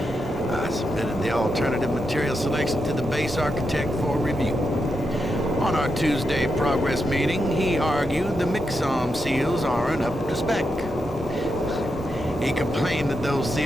I submitted the alternative material selection to the base architect for review. On our Tuesday progress meeting, he argued the Mixom seals aren't up to spec. He complained that those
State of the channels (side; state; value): both; normal; correlation 0.85